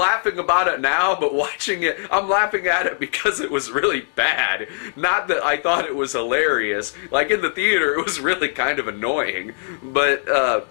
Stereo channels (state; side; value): silent; right; digital silence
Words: about it now, but watching it, I'm laughing at it because it was really bad. Not that I thought it was hilarious. Like, in the theater, it was really kind of annoying. But,